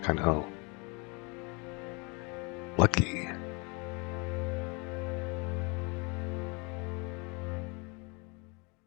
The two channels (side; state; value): right; quieter; 30.5 dB